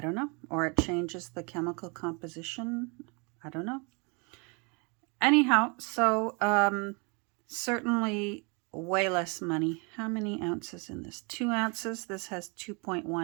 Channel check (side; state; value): left; quieter; 32.2 dB